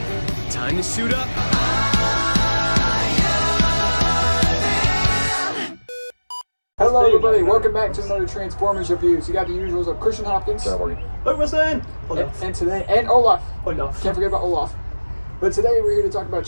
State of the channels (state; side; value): inverted; both; correlation -1.00